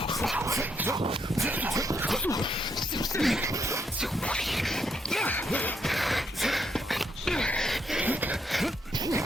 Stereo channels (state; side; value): normal; both; correlation 0.76